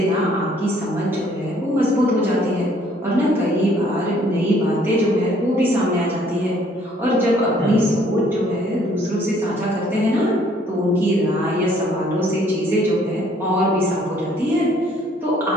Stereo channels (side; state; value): both; normal; correlation 0.61